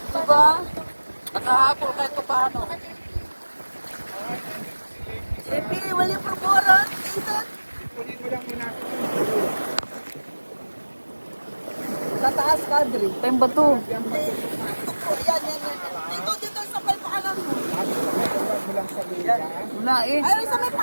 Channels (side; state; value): both; inverted; correlation -1.00